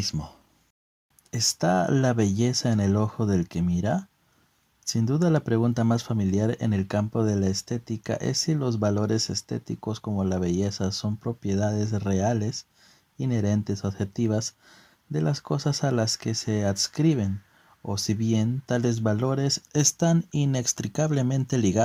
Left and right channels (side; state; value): both; identical; correlation 1.00